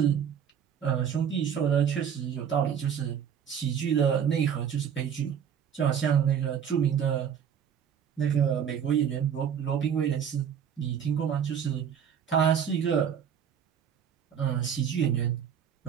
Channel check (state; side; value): quieter; left; 8.2 dB